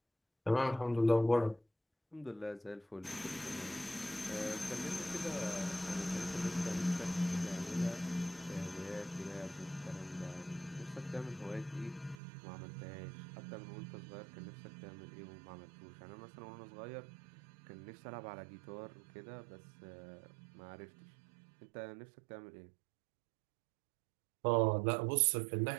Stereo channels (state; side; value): drops out; left; at 12.2 s